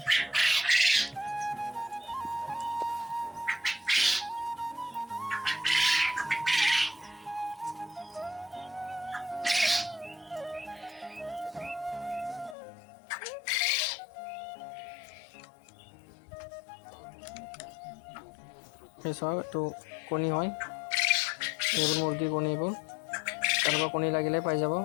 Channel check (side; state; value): right; drops out; at 12.6 s